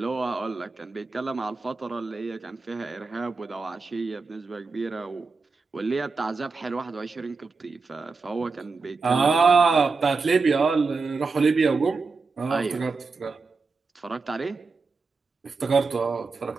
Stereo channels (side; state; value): left; quieter; 4.3 dB